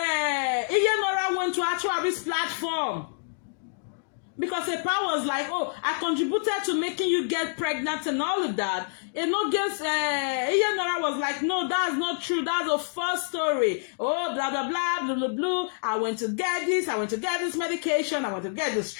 went to Atuari's platform. Because Epa was like, oh, I contributed to making you get pregnant and all of that. Iyenora was like, no, that's not true. That's a false story. Oh, blah, blah, blah, blah, blah, blah. I went to get this. I went to get this medication. I went to get this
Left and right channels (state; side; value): silent; right; digital silence